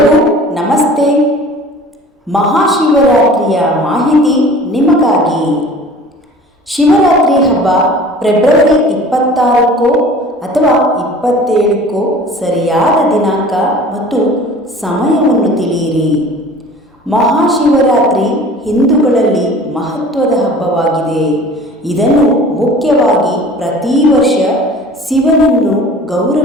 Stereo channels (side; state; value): both; normal; correlation 0.45